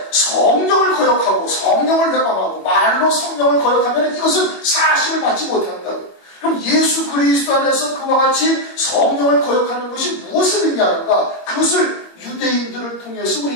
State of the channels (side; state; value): right; late; 21 ms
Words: 성령을 거역하고 성령을 회방하고 말로 성령을 거역하면 이것은 사하심을 받지 못한다고. 그럼 예수 그리스도 안에서 그와 같이 성령을 거역하는 것이 무엇을 의미하는가? 그것을 유대인들을 통해서